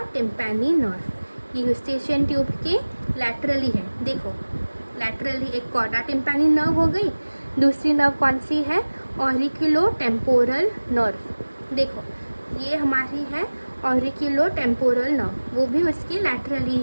टिम्पैनी नर्व। ये यूस्टेशियन ट्यूब के लैटरली है। देखो, लैटरली एक कॉडा टिम्पैनी नर्व हो गई, दूसरी नर्व कौन सी है? Auriculo temporal nerve. देखो ये हमारी है ऑरिकुलो टेम्पोरल नर्व, वो भी उसकी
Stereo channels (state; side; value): inverted; both; correlation -1.00